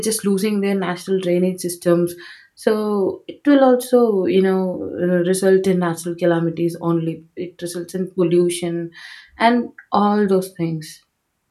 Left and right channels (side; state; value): both; identical; correlation 1.00